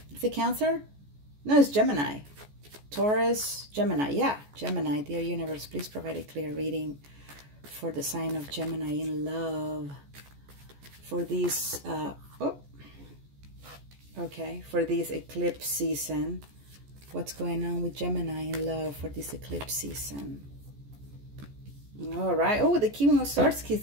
Is it Cancer? No, it's Gemini. Taurus, Gemini. Yeah, Gemini. Dear universe, please provide a clear reading for the sign of Gemini in love. For these, for this eclipse season. What's going on with Gemini in love for this eclipse season? All right. Oh, the King of Swords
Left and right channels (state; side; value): late; left; 14 ms